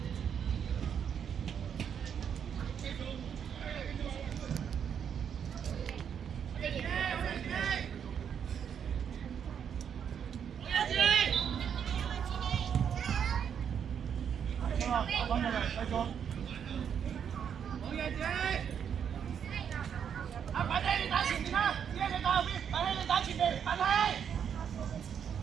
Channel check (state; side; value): quieter; left; 8.0 dB